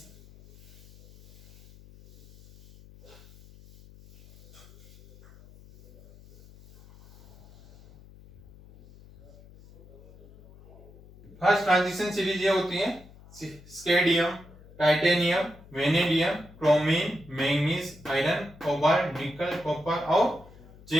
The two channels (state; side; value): noise; left; hum, 23 dB below the sound